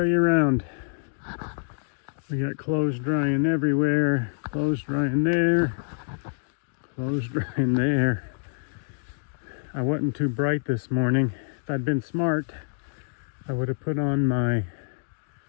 you around. We got clothes drying everywhere, clothes drying there, clothes drying there. I wasn't too bright this morning. If I'd been smart, I would have put on my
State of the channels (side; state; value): right; silent; digital silence